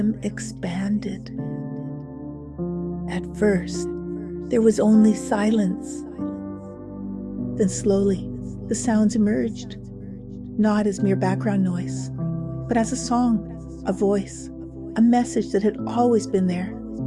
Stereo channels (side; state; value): both; identical; correlation 1.00